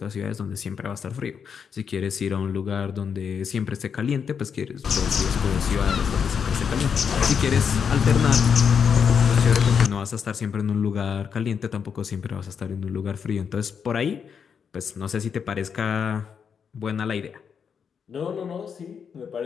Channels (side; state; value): right; quieter; 6.9 dB